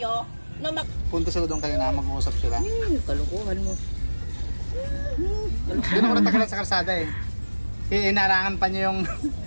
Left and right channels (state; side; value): inverted; both; correlation -1.00